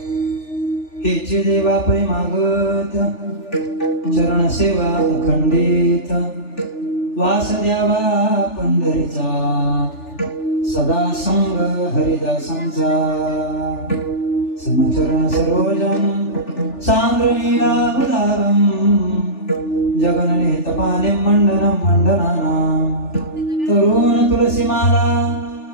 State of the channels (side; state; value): right; late; 3.4 ms